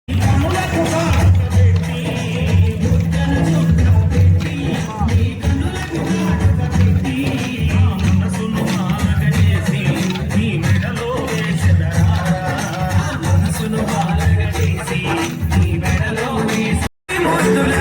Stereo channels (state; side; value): identical; both; correlation 1.00